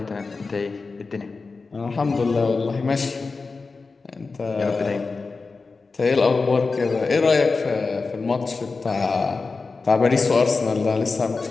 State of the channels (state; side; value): quieter; right; 4.2 dB